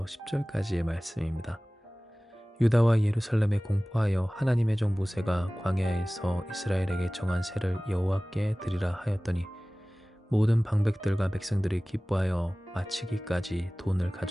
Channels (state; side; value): normal; both; correlation 0.98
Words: 10절까지의 말씀입니다. 유다와 예루살렘에 공포하여 하나님의 종 모세가 광야에서 이스라엘에게 정한 세를 여호와께 드리라 하였더니 모든 방백들과 백성들이 기뻐하여 마치기까지 돈을